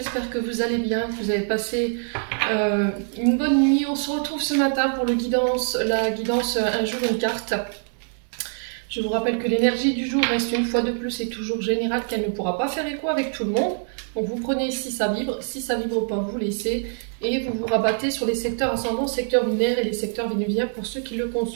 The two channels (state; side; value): silent; left; 62 dB below the other